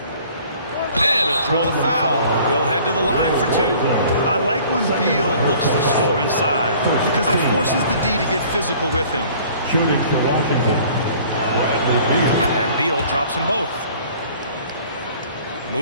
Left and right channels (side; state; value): both; inverted; correlation -0.51